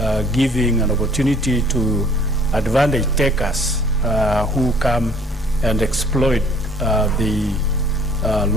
giving an opportunity to advantage takers who come and exploit the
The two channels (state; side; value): normal; both; correlation 0.56